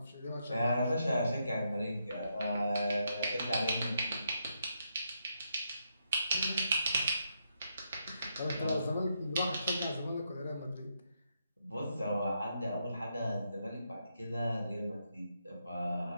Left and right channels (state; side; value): inverted; both; correlation -0.80